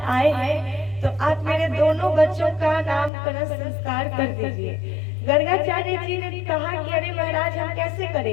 आए हैं तो आप मेरे दोनों बच्चों का नामकरण संस्कार कर दीजिए। गर्गाचार्य जी ने कहा कि अरे महाराज हम कैसे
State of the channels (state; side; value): drops out; right; at 3.1 s